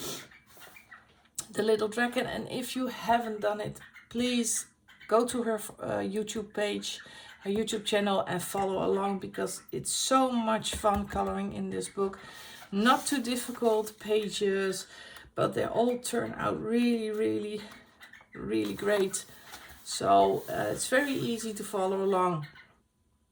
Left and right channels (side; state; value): both; identical; correlation 1.00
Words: The Little Dragon, and if you haven't done it, please go to her YouTube page, her YouTube channel, and follow along, because it's so much fun coloring in this book. Not too difficult pages, but they all turn out really, really, really great. So it's very easy to follow along,